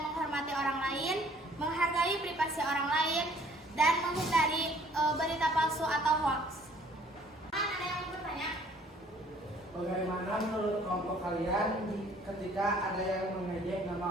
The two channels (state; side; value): normal; both; correlation 0.57